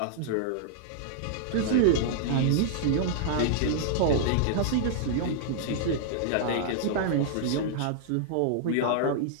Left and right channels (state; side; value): different; both; correlation -0.01